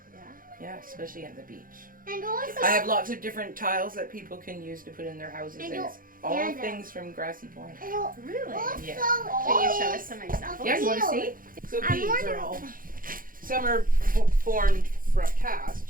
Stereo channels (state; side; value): late; left; 0.41 ms